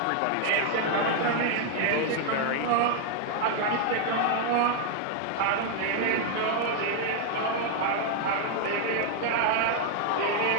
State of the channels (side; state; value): both; different; correlation 0.00